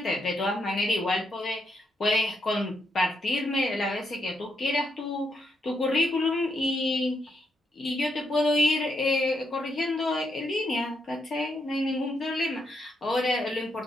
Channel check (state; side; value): normal; both; correlation 0.79